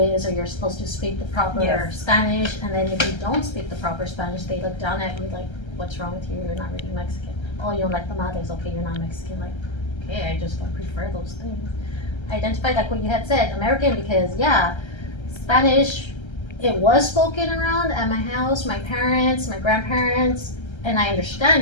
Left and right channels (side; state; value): right; late; 1.3 ms